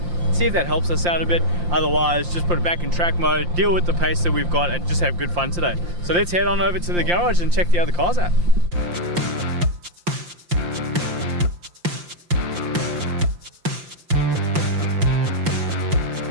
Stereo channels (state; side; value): late; left; 5.7 ms